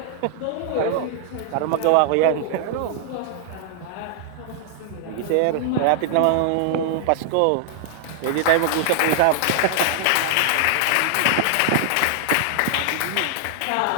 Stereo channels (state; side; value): different; both; correlation -0.01